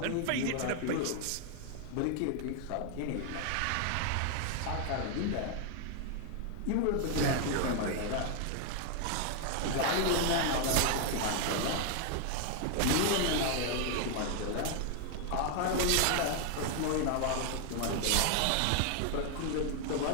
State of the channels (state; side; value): different; both; correlation 0.00